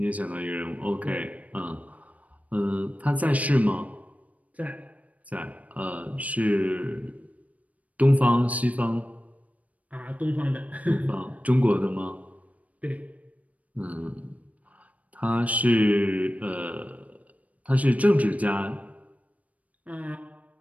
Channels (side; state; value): left; late; 0.070 ms